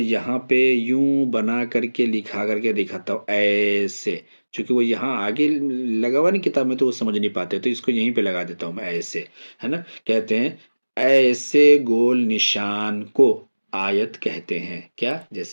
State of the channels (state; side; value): inverted; both; correlation -1.00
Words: پہ یوں بنا کر کے لکھا کر کے دکھاتا ہوں ایسے، چونکہ وہ یہاں آگے لگا ہوا نہیں کتاب میں تو وہ سمجھ نہیں پاتے، تو اس کو یہیں پہ لگا دیتا ہوں میں ایسے، ہے نا. کہتے ہیں ایسے گول نشان کو آیت کہتے ہیں. کیا؟